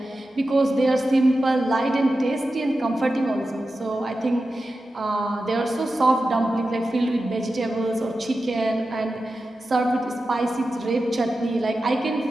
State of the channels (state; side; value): normal; both; correlation 0.92